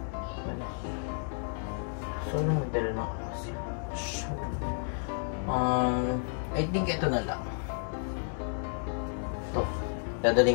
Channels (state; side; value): silent; right; digital silence